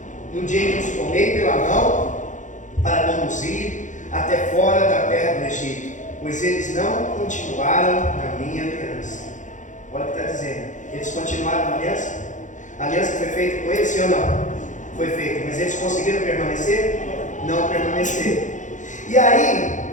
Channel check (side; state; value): right; late; 0.36 ms